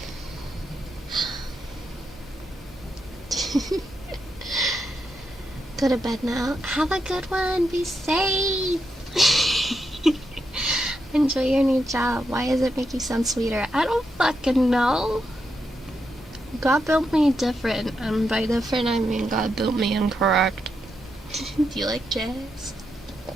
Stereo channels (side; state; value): both; normal; correlation 0.84